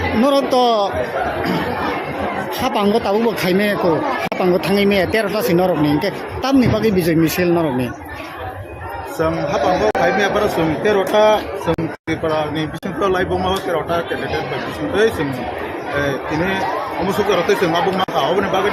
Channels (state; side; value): identical; both; correlation 1.00